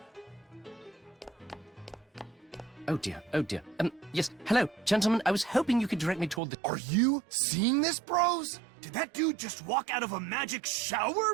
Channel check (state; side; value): drops out; left; at 6.4 s